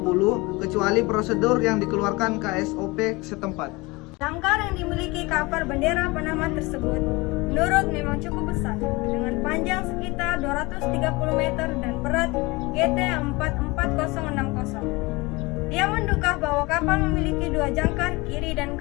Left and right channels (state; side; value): quieter; right; 24.0 dB